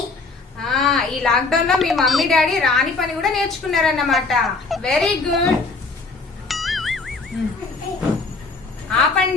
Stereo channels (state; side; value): quieter; right; 3.9 dB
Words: ఈ లాక్డౌన్ లో మీ మమ్మీ డాడీ రాని పని కూడా నేర్చుకున్నారన్నమాట. Very good.